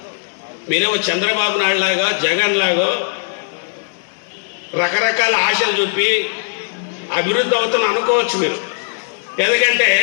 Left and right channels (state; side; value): silent; right; digital silence